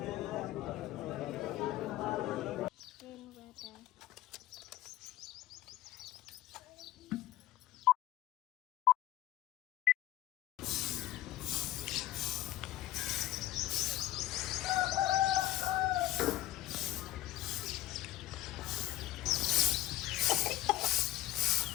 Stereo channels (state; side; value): quieter; right; 15.1 dB